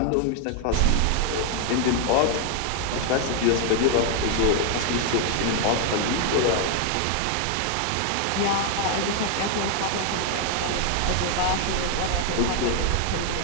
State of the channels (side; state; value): both; different; correlation 0.01